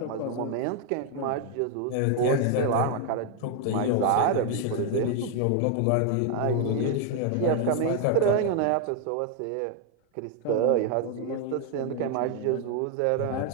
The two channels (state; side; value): different; both; correlation 0.00